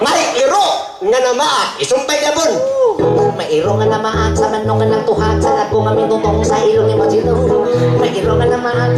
iro nga namaa isumpay gabon. May iro nga namaan sa manok nga nagtuhak sa lagong nga mitutong sa ilong ni Mochitong. May iro nga namaan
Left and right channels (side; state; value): both; identical; correlation 1.00